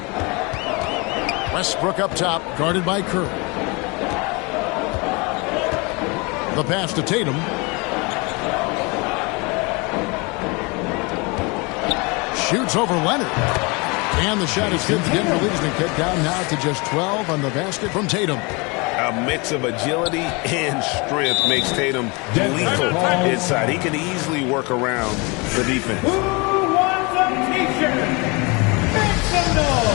Westbrook up top, guarded by Curry. The pass to Tatum. Shoots over Leonard. And the shot is good. The Denver lead has been cut down now to just 12 on the basket from Tatum. A mix of agility and strength makes Tatum lethal inside. He can easily work around the defense. Who wants a t-shirt? Make some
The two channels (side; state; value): right; quieter; 28.3 dB